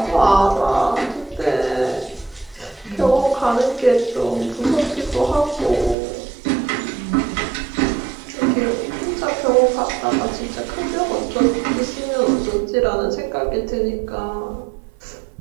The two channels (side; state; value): left; drops out; at 6.0 s